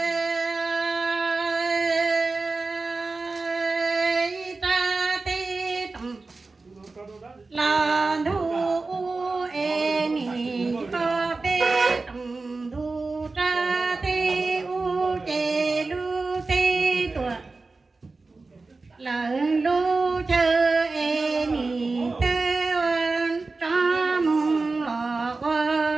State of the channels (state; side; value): quieter; left; 3.7 dB